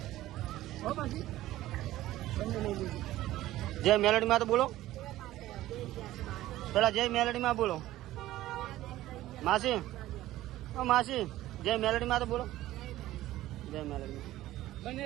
હો પછી બંને લઈ લીધું. જય મેલડીમાં તો બોલો પેલા. જય મેલડીમાં બોલો માસી. ઓ માસી જય મેલડીમાં તો બોલો. જય મેલડીમાં. બંને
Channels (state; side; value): quieter; left; 15.3 dB